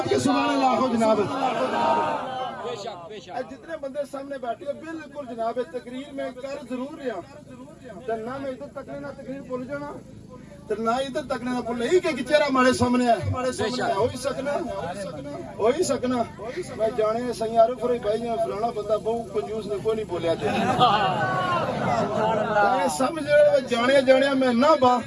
سبحان اللہ ہو جناب. بے شک بے شک. جتنے بندے سامنے بیٹھے بالکل جناب تقریر میں کر ضرور رہا نہ میں ادھر تک نہ تقریر بھول جانا نہ ادھر تک نہ بھول ہی کہ چہرہ ہمارے سامنے ہے. ہو ہی سکنا میں جانے سی عارف ہوئی بھائی فلانا بندہ بہت کنجوس نے کوئی نہیں بولیا سمجھ جانے میں نہ با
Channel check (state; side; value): identical; both; correlation 1.00